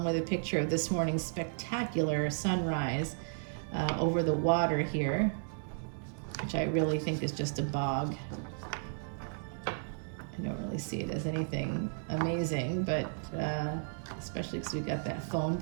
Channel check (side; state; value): left; silent; digital silence